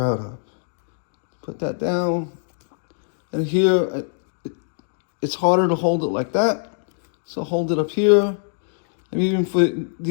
of. Put that down, and here, it's harder to hold it like that, so hold it up here. And even for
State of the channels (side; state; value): right; silent; 63 dB below the other